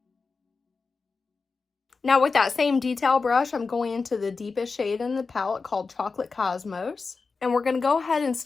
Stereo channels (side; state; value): right; quieter; 4.5 dB